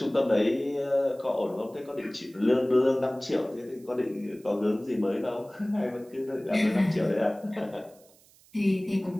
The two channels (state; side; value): noise; right; hiss, 28 dB below the sound